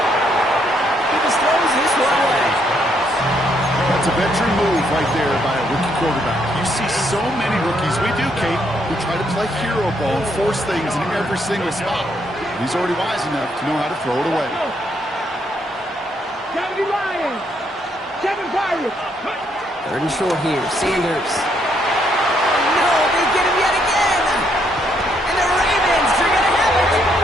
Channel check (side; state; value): both; normal; correlation 0.73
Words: He just throws this one away. That's a veteran move right there by a rookie quarterback. You see so many rookies, we do, Kate, who try to play hero ball and force things in every single spot. He's already wise enough to know how to throw it away. 70 Lions. 7 Pirates. Third and short here, Sanders. No, they get him yet again. And the Ravens are going to have it.